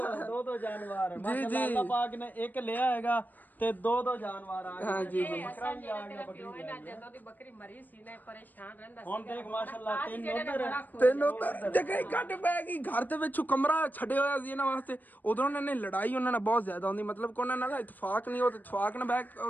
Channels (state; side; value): late; right; 0.086 ms